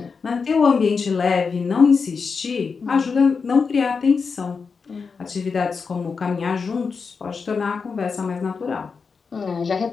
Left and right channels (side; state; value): right; quieter; 5.2 dB